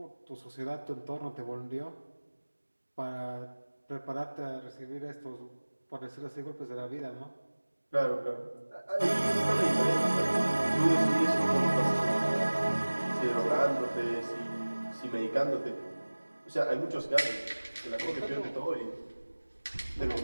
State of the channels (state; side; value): inverted; both; correlation -1.00